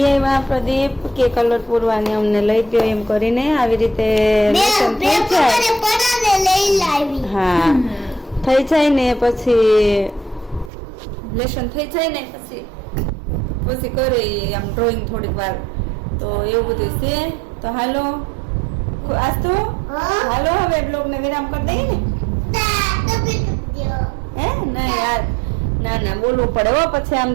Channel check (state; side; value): drops out; left; at 10.7 s